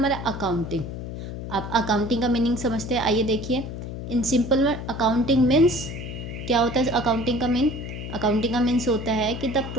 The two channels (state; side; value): noise; left; hum, 8 dB below the sound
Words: अकाउंटिंग। आप अकाउंटिंग का मीनिंग समझते हैं, आइए देखिए। इन सिंपल वर्ड अकाउंटिंग मीन्स, क्या होता है अकाउंटिंग का मीन, अकाउंटिंग का मीन्स होता है कि the